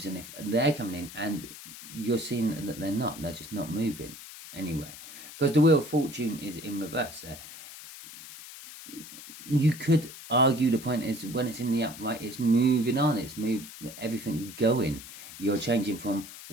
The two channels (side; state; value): left; noise; hiss, 14 dB below the sound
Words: and if they're coming in and you're seeing that they're not, they're just not moving anywhere. Because the Wheel of Fortune is in reverse there. You could argue the point is when it's in the upright, it's moving on, everything's going. You're changing from